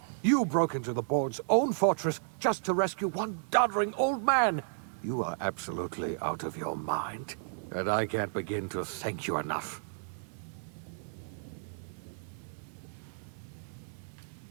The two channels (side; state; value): left; silent; digital silence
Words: you broke into the board's own fortress just to rescue one doddering old man. You are absolutely out of your mind, and I can't begin to thank you enough.